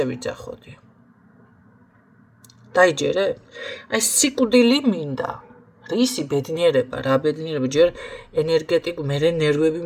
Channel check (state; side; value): identical; both; correlation 1.00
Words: ვიძახოდი დაიჯერე აი სიკვდილი მინდა რისი ბედნიერება რა ბედნიერება ჯერ ენერგეტიკული მე ნერვები